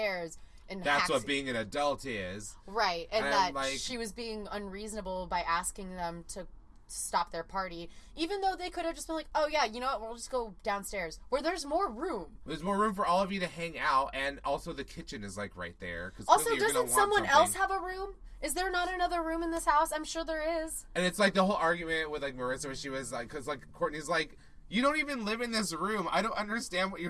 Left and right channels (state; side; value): identical; both; correlation 1.00